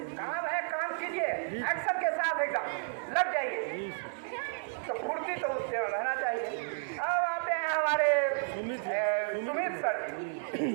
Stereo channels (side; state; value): left; silent; 56 dB below the other